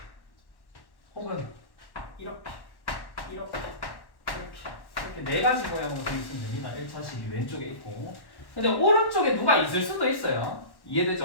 혹은 이렇게 이렇게 네 가지 모양으로 되어 있으면 됩니다. 1차식이 왼쪽에 있고 근데 오른쪽에 누가 있을 수도 있어요.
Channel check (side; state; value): right; late; 1.1 ms